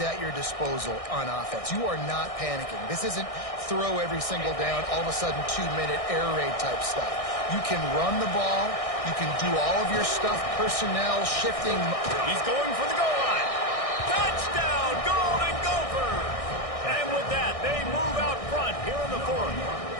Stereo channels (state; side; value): late; right; 1.6 ms